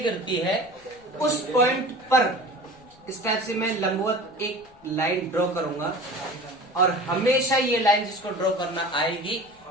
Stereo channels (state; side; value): noise; left; rumble, 29 dB below the sound